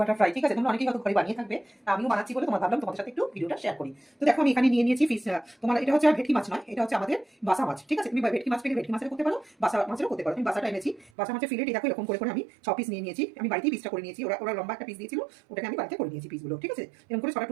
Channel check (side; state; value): left; drops out; at 11.1 s